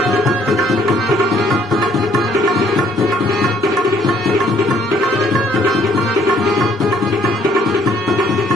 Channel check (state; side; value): normal; both; correlation 0.63